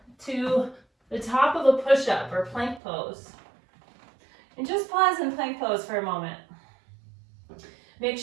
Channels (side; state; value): left; drops out; at 2.8 s